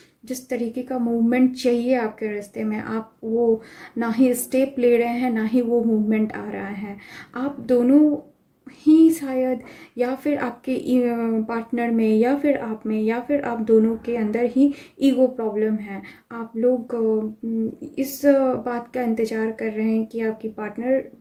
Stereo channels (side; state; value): both; identical; correlation 1.00